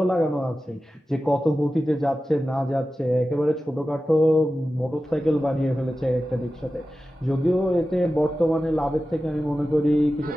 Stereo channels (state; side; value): normal; both; correlation 0.94